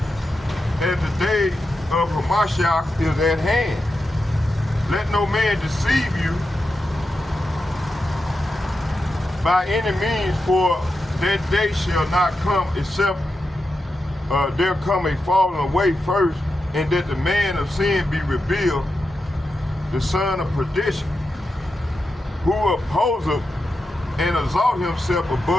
as the day of Hamashiach is at hand. Let no man deceive you by any means, for that day shall not come except there come a falling away first, and that the man of sin be revealed, the son of perdition, who opposeth and exalt himself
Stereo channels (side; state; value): both; normal; correlation 0.89